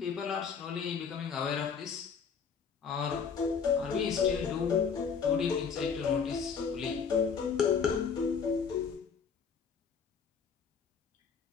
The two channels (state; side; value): quieter; right; 6.2 dB